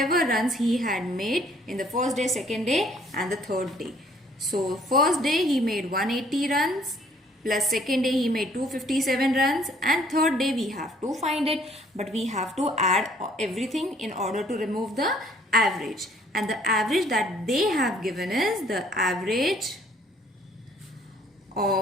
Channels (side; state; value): both; normal; correlation 0.61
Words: runs he had made in the first day, second day and the third day. So first day he made 180 runs, plus second day he made 257 runs, and third day we have to find it, but we have to add everything in order to remove the average. And the average that they have given is the average